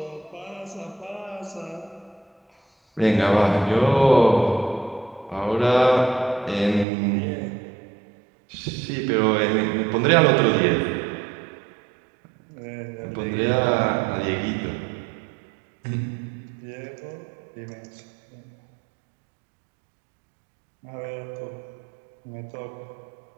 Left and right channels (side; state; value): left; drops out; at 6.9 s